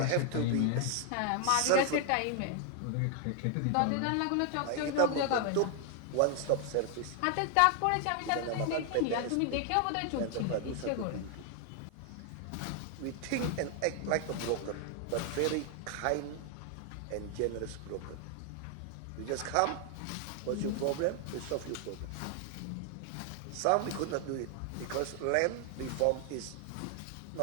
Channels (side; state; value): both; different; correlation 0.00